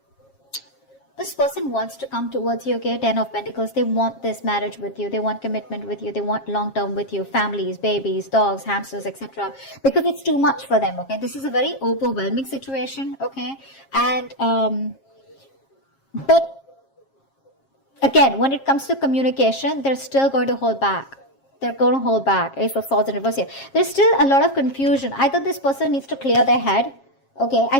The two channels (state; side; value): late; right; 7.4 ms